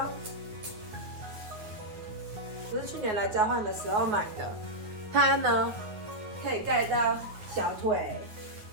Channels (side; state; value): left; late; 9.4 ms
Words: 我是去年来交换的时候买的，它呢可以盖到小腿，